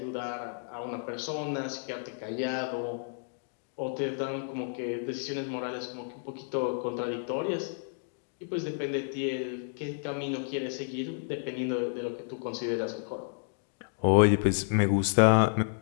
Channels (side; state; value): right; silent; digital silence